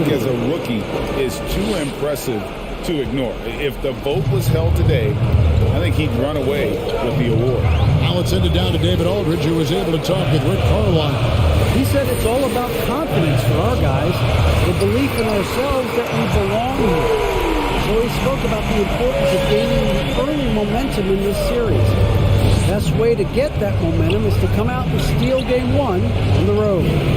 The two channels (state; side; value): identical; both; correlation 1.00